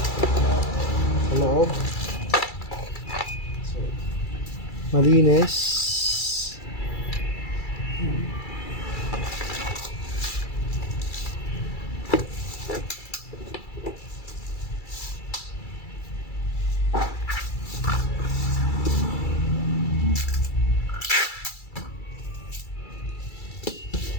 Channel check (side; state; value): right; late; 2.3 ms